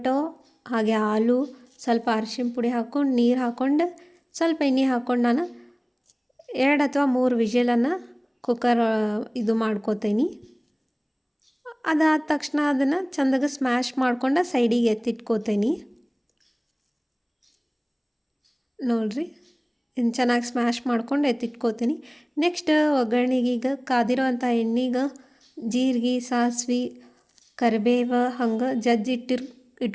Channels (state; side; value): identical; both; correlation 1.00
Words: ಹಾಗೆ ಆಲೂ ಸ್ವಲ್ಪ ಅರಿಶಿನ ಪುಡಿ ಹಾಕ್ಕೊಂಡು ನೀರು ಹಾಕ್ಕೊಂಡು ಸ್ವಲ್ಪ ಎಣ್ಣೆ ಹಾಕ್ಕೊಂಡು ನಾನು 2 ಅಥವಾ 3 ವಿಷಲನ್ನು ಕುಕ್ಕರ್ ಇದು ಮಾಡ್ಕೋತೀನಿ. ಅದಾದ ತಕ್ಷಣ ಅದನ್ನು ಚೆಂದಾಗಿ ಸ್ಮ್ಯಾಶ್ ಮಾಡ್ಕೊಂಡು ಸೈಡಿಗೆ ಎತ್ತಿಟ್ಕೋತೀನಿ. ನೋಡಿರಿ, ಇನ್ನು ಚೆನ್ನಾಗಿ ಸ್ಮ್ಯಾಶ್ ಮಾಡ್ಕೊಂಡು ಎತ್ತಿಟ್ಕೋತೀನಿ. ನೆಕ್ಸ್ಟ್ ಒಗ್ಗರಣೆಗೆ ಈಗ ಕಾದಿರೋವಂಥ ಎಣ್ಣೆಗೆ ಜೀರಿಗೆ, ಸಾಸಿವೆ, ಕರಿಬೇವು ಹಂಗೆ